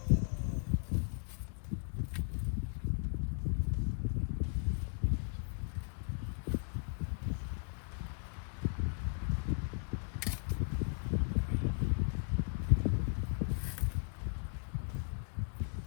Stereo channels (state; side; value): silent; right; 53 dB below the other